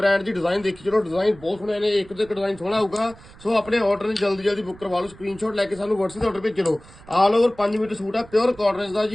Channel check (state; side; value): noise; right; rumble, 21 dB below the sound